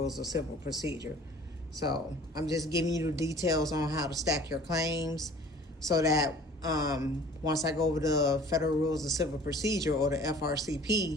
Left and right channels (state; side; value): normal; both; correlation 0.48